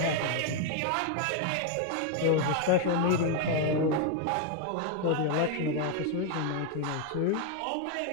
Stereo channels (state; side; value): different; both; correlation 0.01